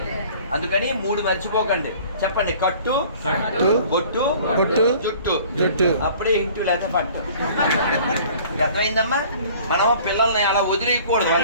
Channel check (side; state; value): both; inverted; correlation -0.50